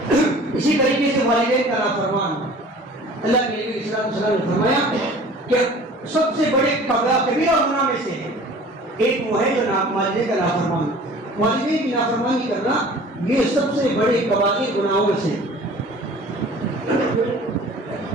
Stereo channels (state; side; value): normal; both; correlation 0.46